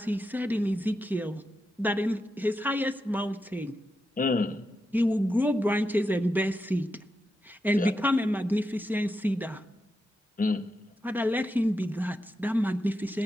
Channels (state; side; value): normal; both; correlation 0.87